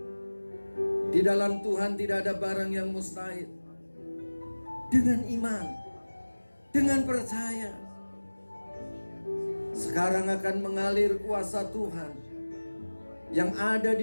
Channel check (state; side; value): inverted; both; correlation -1.00